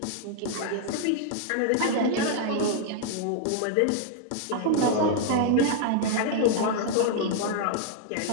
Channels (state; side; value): different; both; correlation 0.00